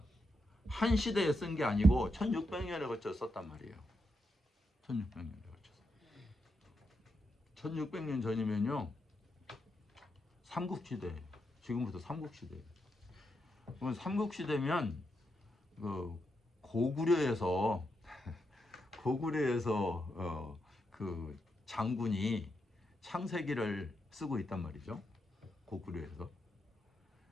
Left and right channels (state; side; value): normal; both; correlation 0.83